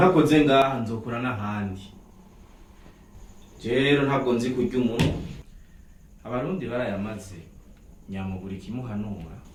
ngaha nzokura n'ahandi. Rero ntabwo nzi kurya umuntu. Abarundi barayamaze nyamuburi kimuhanura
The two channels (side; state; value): both; identical; correlation 1.00